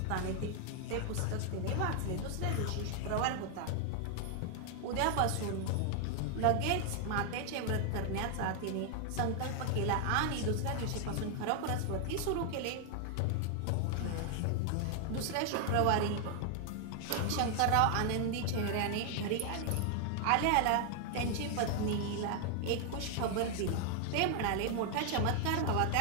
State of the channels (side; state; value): both; different; correlation 0.00